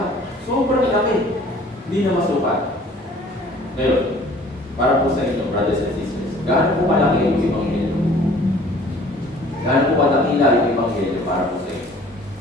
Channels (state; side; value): normal; both; correlation 0.52